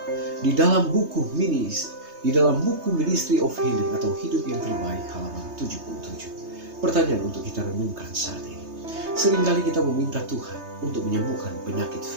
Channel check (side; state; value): left; late; 3.3 ms